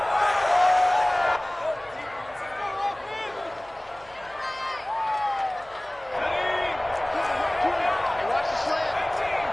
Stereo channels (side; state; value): right; noise; hum, 26 dB below the sound